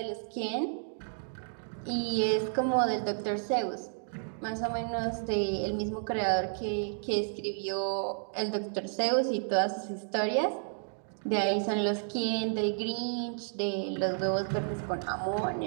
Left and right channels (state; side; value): silent; left; digital silence